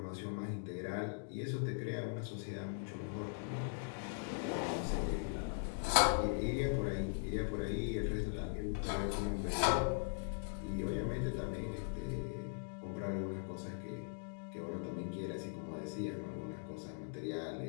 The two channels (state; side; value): silent; right; digital silence